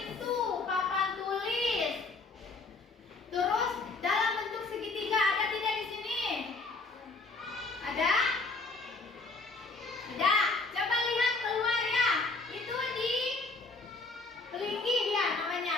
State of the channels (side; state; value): right; quieter; 3.7 dB